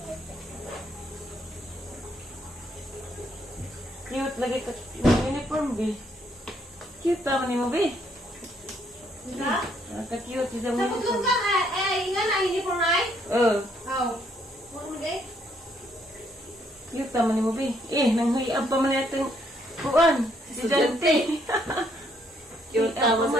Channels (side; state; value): both; normal; correlation 0.70